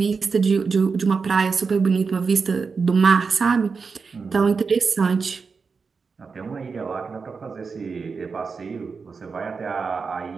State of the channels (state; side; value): quieter; left; 5.0 dB